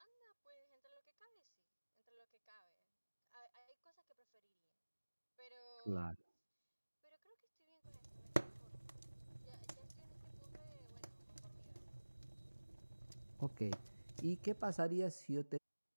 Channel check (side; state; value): both; inverted; correlation -1.00